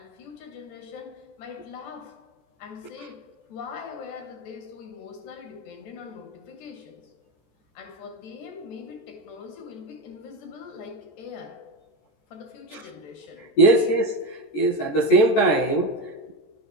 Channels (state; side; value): late; right; 14 ms